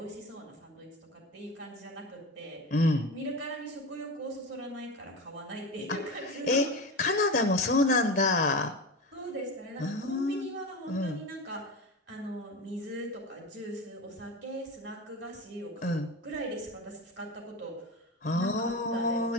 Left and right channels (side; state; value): both; normal; correlation 0.25